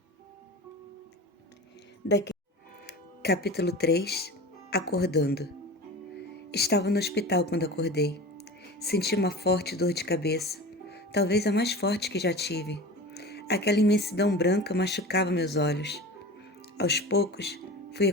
Capítulo 3. Acordando. Estava no hospital quando acordei. Senti uma forte dor de cabeça, talvez a mais forte que já tive. Aquela imensidão branca machucava meus olhos. Aos poucos, fui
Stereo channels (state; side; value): normal; both; correlation 0.33